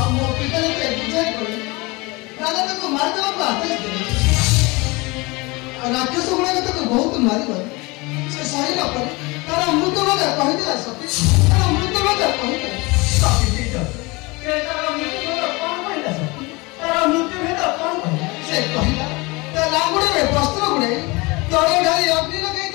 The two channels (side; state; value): right; quieter; 25.0 dB